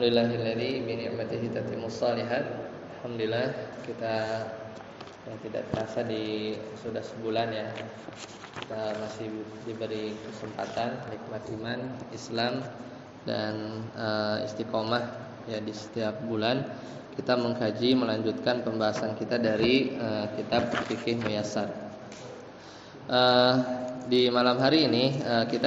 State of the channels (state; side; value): identical; both; correlation 1.00